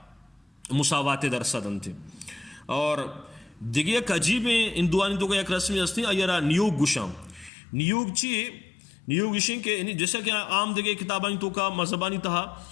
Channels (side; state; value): right; drops out; at 7.5 s